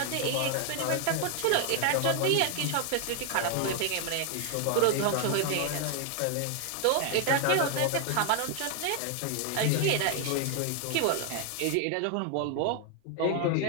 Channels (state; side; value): different; both; correlation 0.00